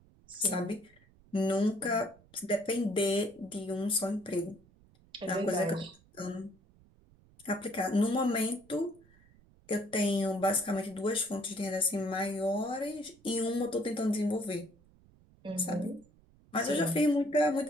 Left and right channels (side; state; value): right; noise; rumble, 28 dB below the sound